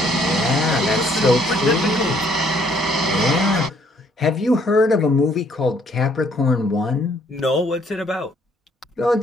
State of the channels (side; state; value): both; normal; correlation 0.65